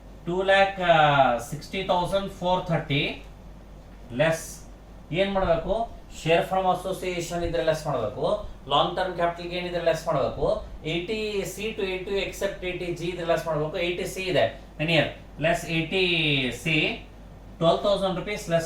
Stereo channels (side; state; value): both; identical; correlation 1.00